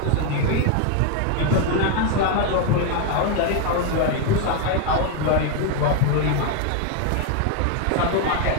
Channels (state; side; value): different; both; correlation 0.01